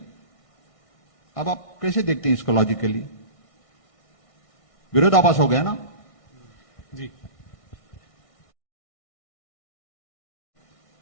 अब आप कैसे देखते हैं इसको लॉजिकली? विरोधाभास हो गया ना जी।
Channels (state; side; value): late; right; 1.6 ms